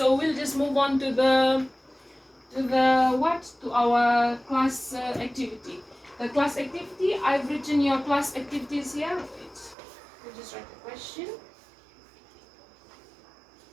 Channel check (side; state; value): left; drops out; at 9.8 s